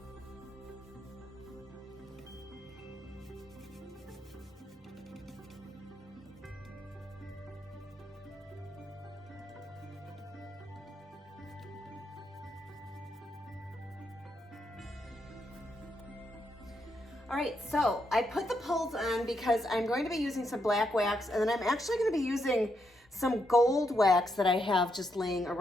All right, so I put the pulls on because I'm going to be using some black wax, and then I'm actually going to be using some gold wax that I have just laying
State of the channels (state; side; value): normal; both; correlation 0.80